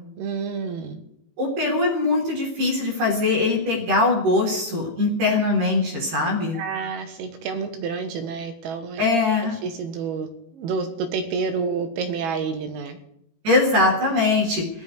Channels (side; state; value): left; late; 18 ms